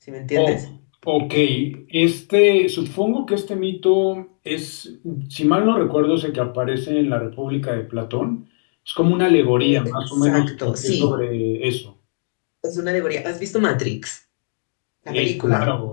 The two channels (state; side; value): silent; right; digital silence